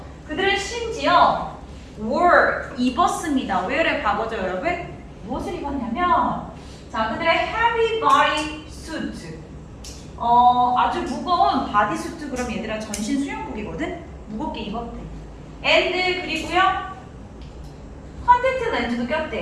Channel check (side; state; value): both; identical; correlation 1.00